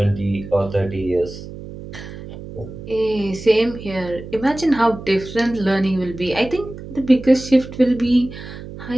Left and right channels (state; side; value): noise; right; hum, 13 dB below the sound